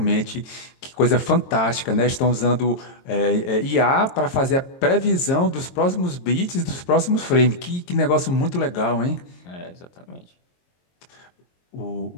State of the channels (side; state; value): right; late; 22 ms